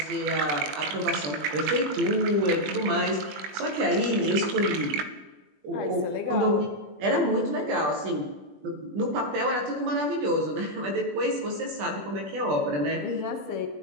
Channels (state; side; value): late; left; 20 ms